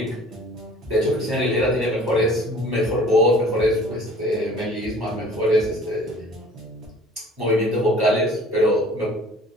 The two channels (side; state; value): both; normal; correlation 0.49